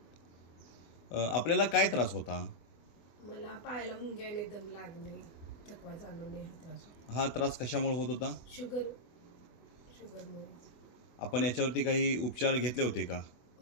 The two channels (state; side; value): late; right; 24 ms